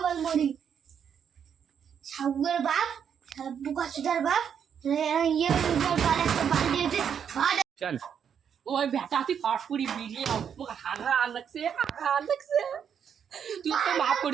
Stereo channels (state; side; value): quieter; left; 7.9 dB